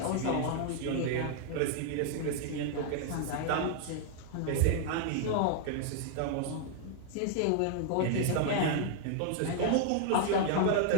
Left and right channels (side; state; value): both; different; correlation 0.00